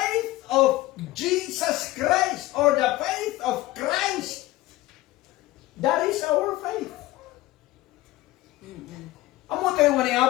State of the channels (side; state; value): right; quieter; 17.7 dB